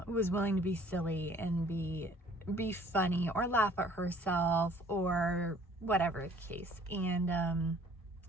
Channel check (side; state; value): both; normal; correlation 0.55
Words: was willing to be silly and be funny or laugh at herself or whatever the case. And,